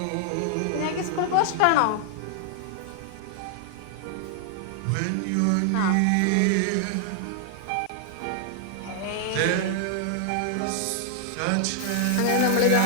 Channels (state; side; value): different; both; correlation 0.00